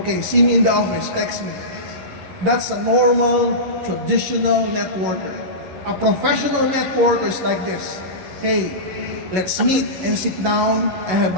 see me in the office, text me. That's a normal, traditional networker. A professional networker is like this. Hey, Let's meet and sit down and have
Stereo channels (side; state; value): left; late; 11 ms